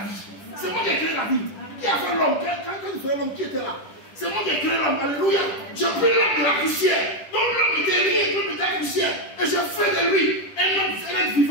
vie. C'est moi qui ai créé la vie. Qui a fait l'homme? Quand il faisait l'homme, qui était là? C'est moi qui ai créé l'homme. Alléluia. J'ai pris l'homme de la poussière. Donc l'homme était rien, l'homme était la poussière. Et j'ai fait de lui un homme, un être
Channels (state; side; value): late; right; 10 ms